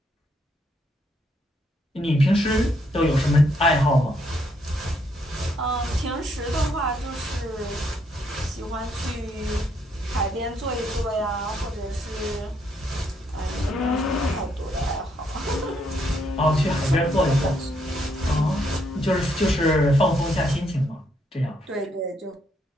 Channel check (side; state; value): both; normal; correlation 0.73